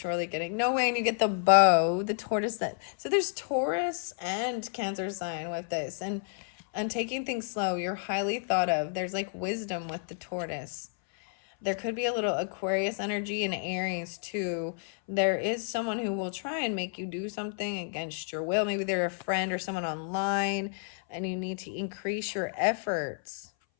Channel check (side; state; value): right; silent; 57 dB below the other